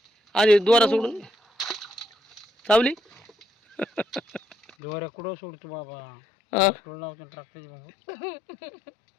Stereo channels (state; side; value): drops out; right; at 4.7 s